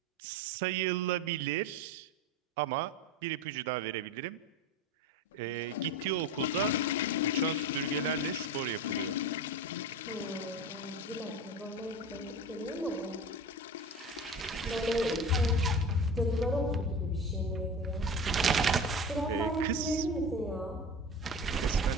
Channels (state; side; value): normal; both; correlation 0.30